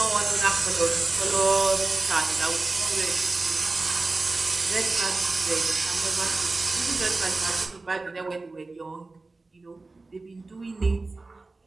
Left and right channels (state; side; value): quieter; left; 3.5 dB